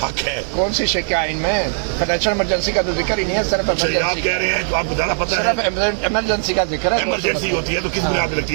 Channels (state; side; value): silent; left; digital silence